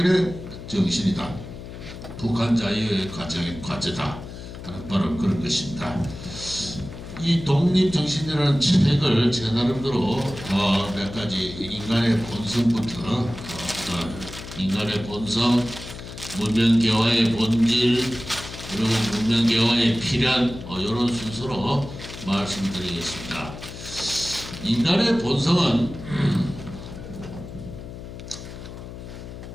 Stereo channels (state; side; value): noise; left; hum, 12 dB below the sound